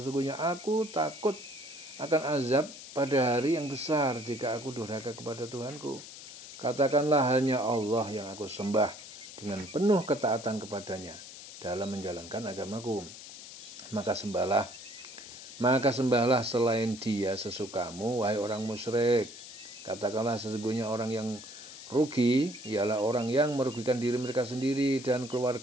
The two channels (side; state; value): left; noise; hiss, 14 dB below the sound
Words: aku takut akan azab pada hari yang besar jika aku durhaka kepada Tuhanku. Katakanlah, hanya Allah yang aku sembah dengan penuh ketaatan kepadanya dalam menjalankan agamaku. Maka sembahlah selain Dia sesukamu, wahai orang musyrik. Katakanlah, sesungguhnya orang yang rugi ialah orang yang merugikan diri mereka sendiri dan